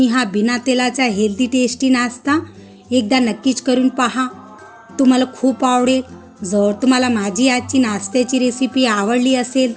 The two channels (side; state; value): both; identical; correlation 1.00